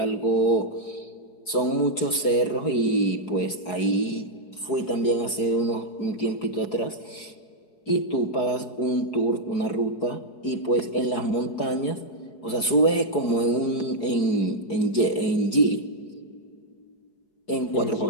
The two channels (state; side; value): late; right; 4.7 ms